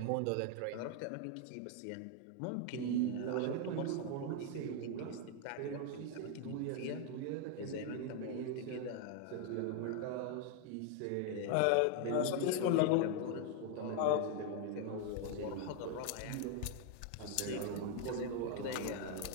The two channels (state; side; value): different; both; correlation 0.01